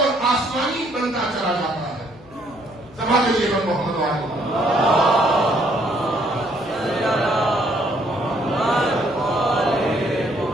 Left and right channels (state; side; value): noise; left; hum, 23 dB below the sound